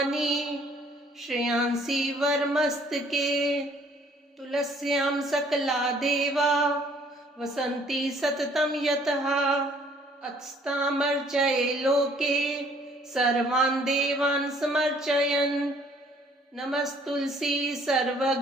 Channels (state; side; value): normal; both; correlation 0.60